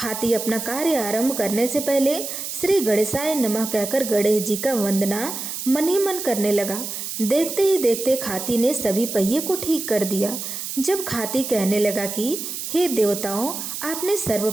अपना कार्य आरंभ करने से पहले श्री गणेशाय नमः कहकर गणेश जी का वंदना मन ही मन करने लगा। देखते ही देखते खाती ने सभी पहिए को ठीक कर दिया। जब खाती कहने लगा कि हे देवताओं, आपने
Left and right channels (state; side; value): noise; right; hiss, 6 dB below the sound